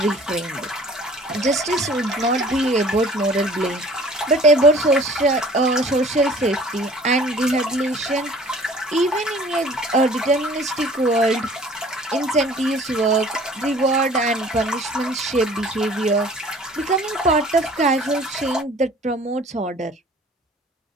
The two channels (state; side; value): normal; both; correlation 0.50